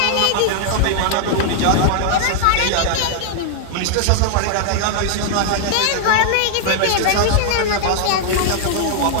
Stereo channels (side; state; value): both; different; correlation -0.01